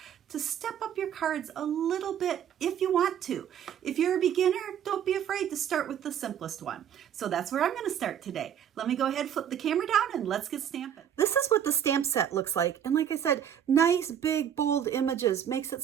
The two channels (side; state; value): left; quieter; 9.3 dB